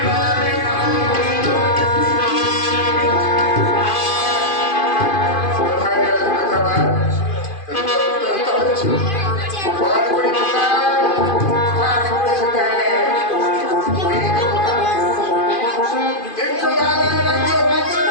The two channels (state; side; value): late; right; 2.5 ms